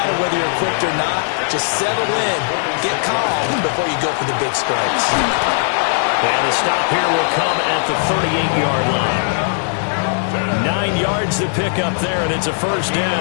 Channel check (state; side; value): silent; right; 67 dB below the other